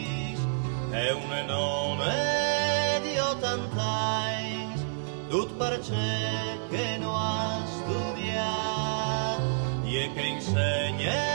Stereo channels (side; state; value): left; silent; digital silence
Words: e un nome di 80 anni, tut perché che non ha studiato, e che insegna